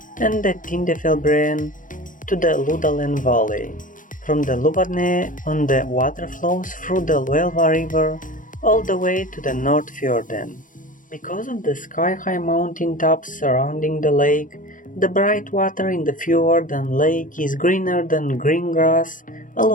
and the Tindefjellbreen to the Lodalen valley. From the Lovatnet on the water flows through the Loelva river all the way to the Nordfjorden. Because of the sky-high mountain tops surrounding the lake, the bright water in the fjord and lake is greener than green grass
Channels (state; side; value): late; right; 0.38 ms